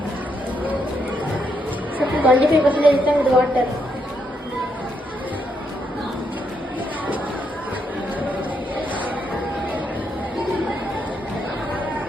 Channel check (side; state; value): both; normal; correlation 0.78